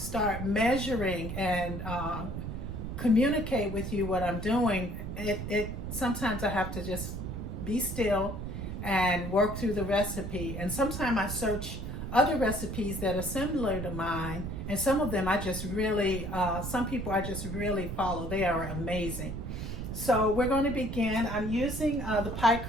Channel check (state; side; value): noise; right; rumble, 6 dB below the sound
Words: measuring and communicate with you what I'm doing, it sometimes I have to just be still and work through the recipe. And sometimes I search other recipes that are similar to mine, and some of them I just really, some people I just really follow. They are amazing. So we're going to begin. I'm using the pie